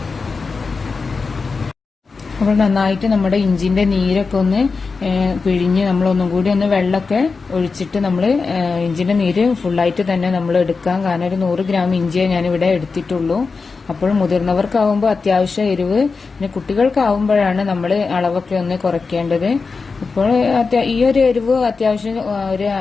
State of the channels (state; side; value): quieter; right; 4.5 dB